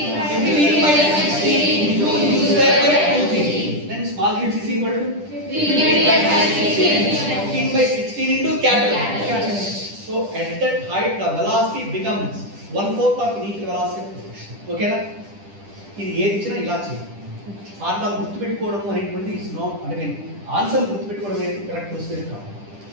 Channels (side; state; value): left; late; 10 ms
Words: 15 by 16 into u square by 2g. Then small h is equal to 15 by 16 into capital. So at that height the velocity becomes 1/4 of initial velocity of collision. Okay na? ఇది ఏది ఇచ్చినా ఇలా చేయాలి. Formula గుర్తుపెట్టుకోవడం అనేటువంటిది it's not అంటే answer గుర్తుపెట్టుకోవడం అనేది correct procedure కాదు.